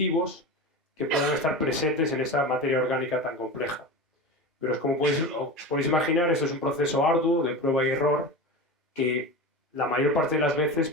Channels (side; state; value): both; normal; correlation 0.27